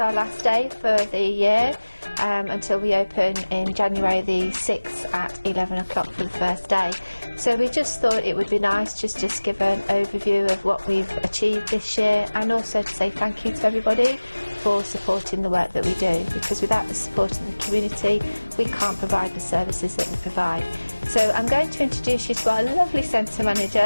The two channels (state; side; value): inverted; both; correlation -1.00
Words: last day for the year until we open in January the 6th at 11 o'clock for the first day. So we just thought it would be nice just to give an overview of what we've achieved this year, and also to say thank you to everybody for supporting the work that we do, because without the support of the community we can't provide the services that we provide. So I'm going to introduce you to our lovely centre